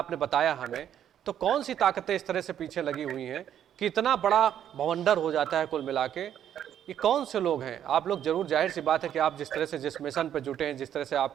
बताया हमें, तो कौन सी ताकतें इस तरह से पीछे लगी हुई हैं कि इतना बड़ा भवंडर हो जाता है कुल मिला के? ये कौन से लोग हैं? आप लोग जरूर, जाहिर सी बात है कि आप जिस तरह से जिस मिशन पे जुटे हैं, जिस तरह से आप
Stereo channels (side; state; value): left; quieter; 10.1 dB